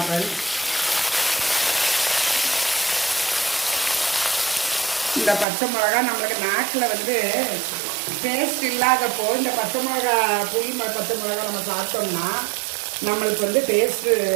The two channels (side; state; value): left; drops out; at 5.5 s